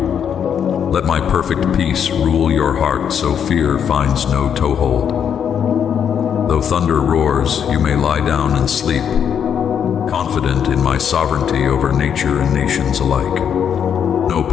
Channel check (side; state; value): right; quieter; 8.2 dB